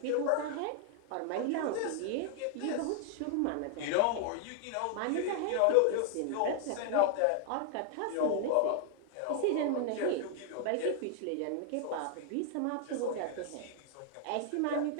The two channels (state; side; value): different; both; correlation 0.00